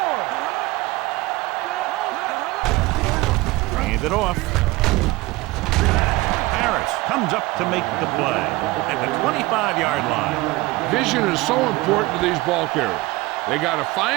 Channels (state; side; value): quieter; left; 20.5 dB